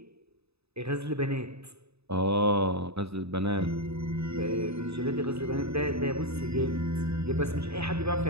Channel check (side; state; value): left; late; 0.79 ms